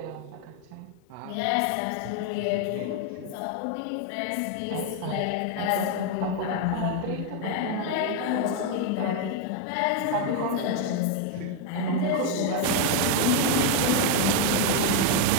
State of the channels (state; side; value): different; both; correlation 0.01